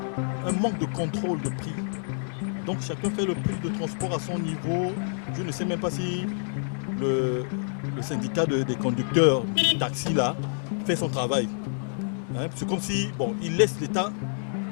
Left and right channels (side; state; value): right; silent; 58 dB below the other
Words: manque de contrôle de prix. Donc chacun fait le prix de transport à son niveau. Je ne sais même pas si le syndicat des conducteurs du taxi là fait son travail. C'est comme si il laisse l'État